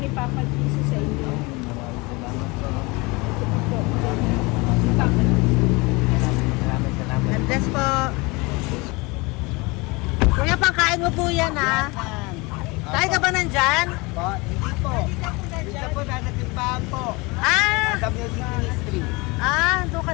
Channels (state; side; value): quieter; right; 25.6 dB